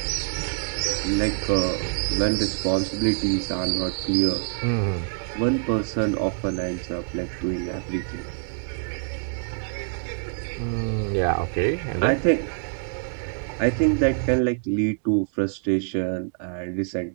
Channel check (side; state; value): left; silent; digital silence